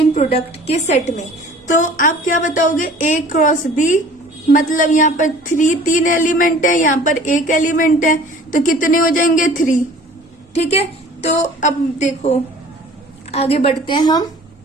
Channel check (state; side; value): normal; both; correlation 0.48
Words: प्रोडक्ट के सेट में, तो आप क्या बताओगे ए क्रॉस बी, मतलब यहाँ पर 3 एलिमेंट है, यहाँ पर 1 एलिमेंट है, तो कितने हो जाएंगे 3। ठीक है, तो अब देखो आगे बढ़ते हैं हम।